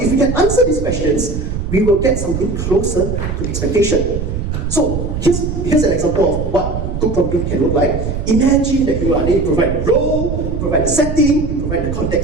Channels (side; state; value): right; noise; rumble, 4 dB below the sound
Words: if we can answer these questions, we will get something closer to expectation. So here's an example of what good prompting can look like. Imagine that you provide a role, you provide a setting, you provide the